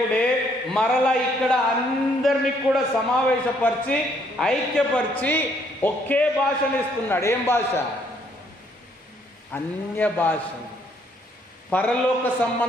మరలా ఇక్కడ అందరినీ కూడా సమావేశపరిచి ఐక్యపరిచి ఒకే భాషను ఇస్తున్నాడు. ఏం భాష? అన్య భాషలు, పరలోక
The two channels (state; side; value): normal; both; correlation 0.67